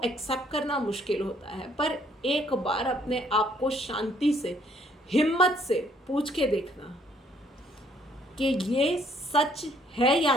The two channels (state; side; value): normal; both; correlation 0.65